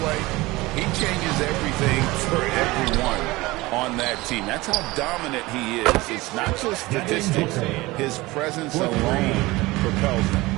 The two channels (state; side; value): quieter; left; 20.7 dB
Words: He changes everything for everyone on that team. That's how dominant he is. It's not just statistics. His presence alone propels them.